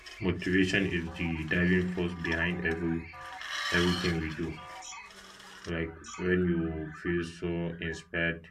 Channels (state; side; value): identical; both; correlation 1.00